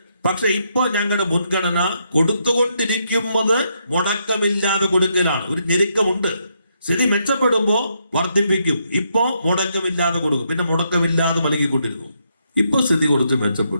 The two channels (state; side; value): inverted; both; correlation -0.77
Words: പക്ഷെ ഇപ്പൊ ഞങ്ങളുടെ മുൻഗണന കൊടുത്തുകൊണ്ടിരിക്കുന്നത് മുടക്കമില്ലാതെ കൊടുക്കലാണ്. ഒരു ഞെരുക്കമുണ്ട്. സ്ഥിതി മെച്ചപ്പെടുമ്പോ വർദ്ധിപ്പിക്കും. ഇപ്പോ മുടക്കമില്ലാതെ കൊടുക്കും, പിന്നെ മുടക്കമില്ലാതെ നൽകിക്കൊണ്ടിരുന്നു. ഇപ്പൊ സ്ഥിതി കുറച്ച്